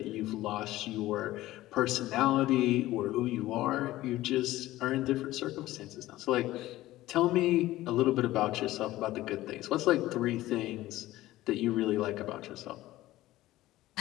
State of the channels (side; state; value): right; quieter; 16.3 dB